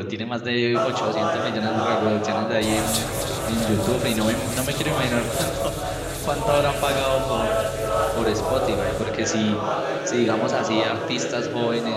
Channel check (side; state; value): both; identical; correlation 1.00